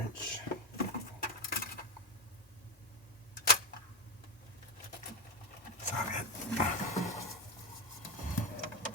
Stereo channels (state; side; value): normal; both; correlation 0.12